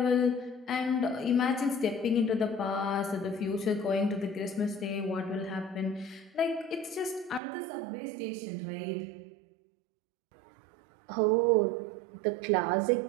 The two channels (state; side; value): drops out; left; at 7.4 s